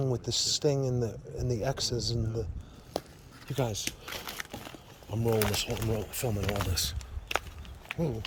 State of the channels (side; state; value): both; identical; correlation 1.00